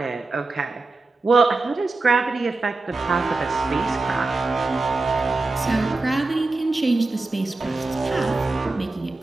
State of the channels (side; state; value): left; quieter; 3.4 dB